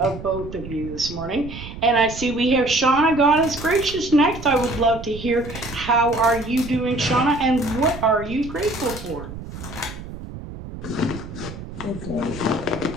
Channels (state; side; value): noise; right; rumble, 12 dB below the sound